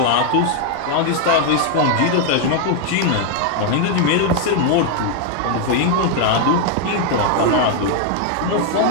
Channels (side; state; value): both; different; correlation 0.00